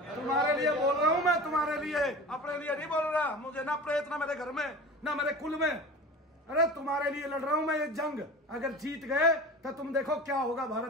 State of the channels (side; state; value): both; normal; correlation 0.35